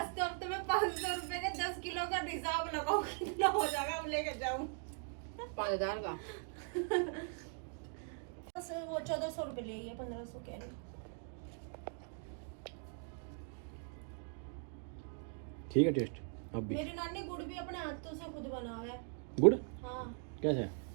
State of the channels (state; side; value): silent; left; 51 dB below the other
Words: कब तो मैं 500 रुपए के 10 किलो का हिसाब लगाऊं, कितना हो जाएगा वो लेके जाऊं। 5000 का बस वो 1400 रुपये ले लिया, 1500 कह रही। ठीक है टेस्ट अब भी। मेरी नानी गुड़ भी अपने हाथों से खुद बना हुआ है। गुड़ हाँ, कैसे?